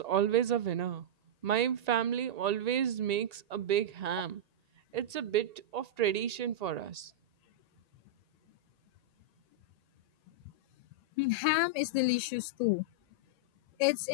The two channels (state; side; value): late; left; 1.8 ms